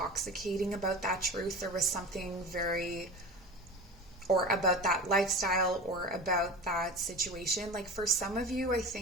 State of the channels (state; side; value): normal; both; correlation 0.33